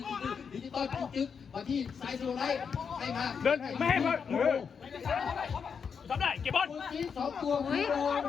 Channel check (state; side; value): quieter; right; 6.4 dB